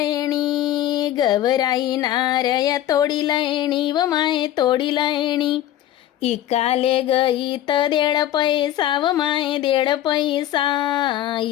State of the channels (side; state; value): right; quieter; 12.6 dB